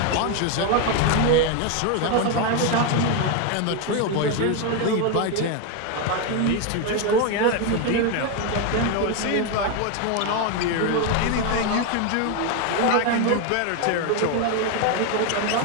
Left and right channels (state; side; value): different; both; correlation 0.02